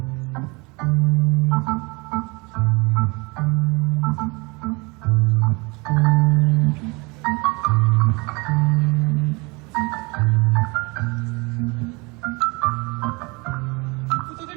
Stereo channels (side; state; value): left; quieter; 27.5 dB